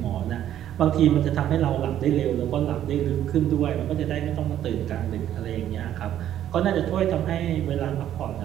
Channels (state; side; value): quieter; left; 11.3 dB